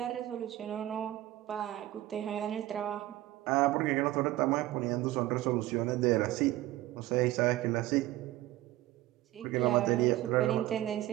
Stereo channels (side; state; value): left; quieter; 15.7 dB